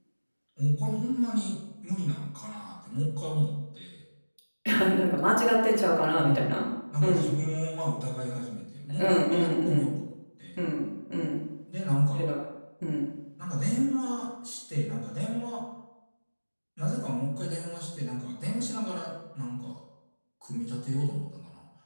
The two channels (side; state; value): both; inverted; correlation -1.00